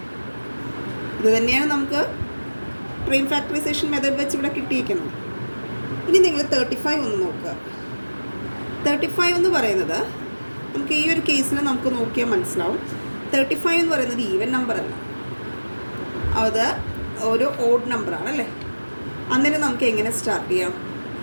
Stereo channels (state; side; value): inverted; both; correlation -1.00